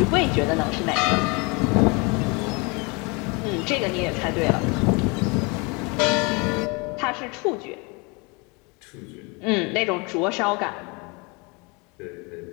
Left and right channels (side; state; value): right; quieter; 29.5 dB